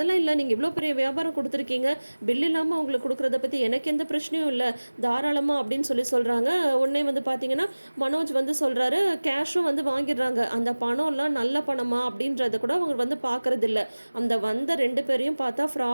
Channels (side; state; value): both; inverted; correlation -1.00